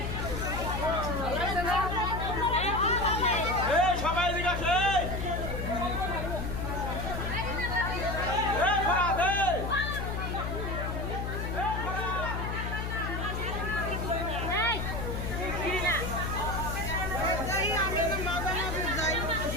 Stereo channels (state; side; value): noise; left; hum, 3 dB below the sound